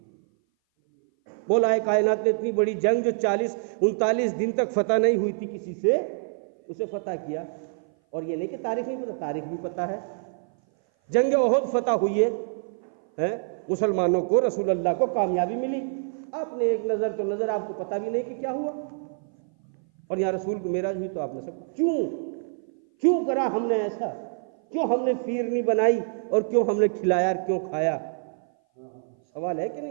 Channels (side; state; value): left; silent; 57 dB below the other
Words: مولا کائنات نے اتنی بڑی جنگ جو 39 دن تک فتح نہیں ہوئی تھی کسی سے، اسے فتح کیا، اور یہ نہیں کہ تاریخ نہیں پتہ، تاریخ بھی پتہ ہے۔ جنگ احد فتح ہوئی ہے، مسلمانوں کو، رسول اللہ کو کامیابی ملی، آپ نے ایک نظر تو نظر، آپ کو پتہ بھی نہیں کہ کیا ہوا، اور یہاں رسول کو معراج ہوئی تو آپ نے سب کیوں کرا ہم نے ایسا؟ کیوں ہم نے فیرنی بنائی، اور کیوں ہم نے کھلایا اور کیوں کھایا؟ سوال ہے کہ